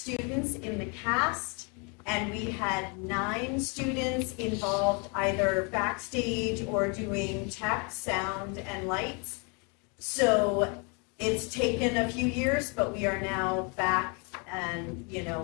in the cast, and we had 9 students involved either backstage or doing tech, sound, and lights. So it's taken a few years, but we are now back and,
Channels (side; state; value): right; quieter; 33.9 dB